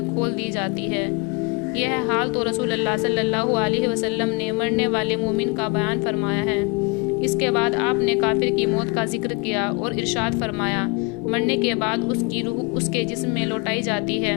کھول دی جاتی ہے۔ یہ حال تو رسول اللہ صلی اللہ علیہ وسلم نے مرنے والے مومن کا بیان فرمایا ہے۔ اس کے بعد آپ نے کافر کی موت کا ذکر کیا اور ارشاد فرمایا، مرنے کے بعد اس کی روح اس کے جسم میں لوٹائی جاتی ہے،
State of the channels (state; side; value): quieter; right; 29.1 dB